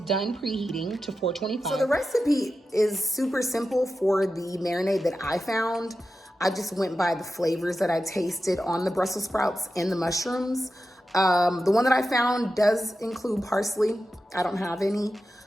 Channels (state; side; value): normal; both; correlation 0.91